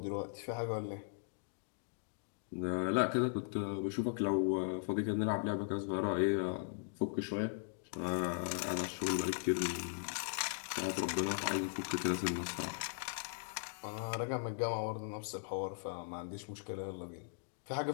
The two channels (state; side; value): silent; right; digital silence